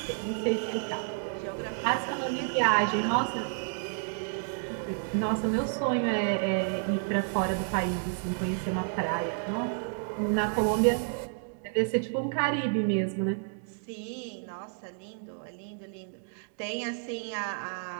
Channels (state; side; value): silent; left; digital silence